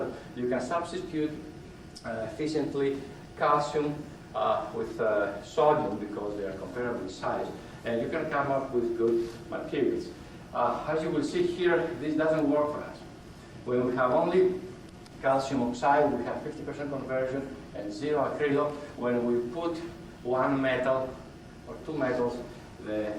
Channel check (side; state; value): both; identical; correlation 1.00